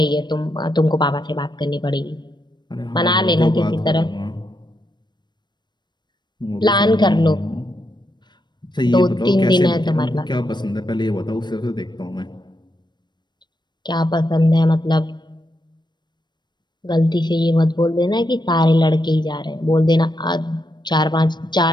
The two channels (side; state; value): right; late; 0.21 ms